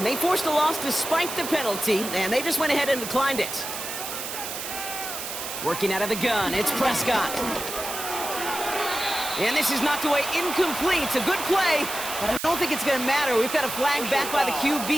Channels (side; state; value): right; noise; hiss, 6 dB below the sound